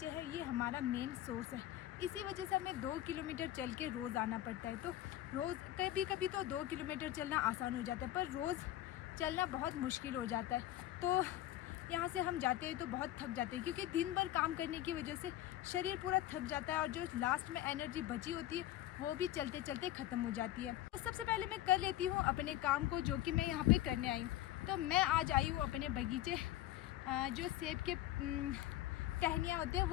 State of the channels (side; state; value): right; quieter; 13.9 dB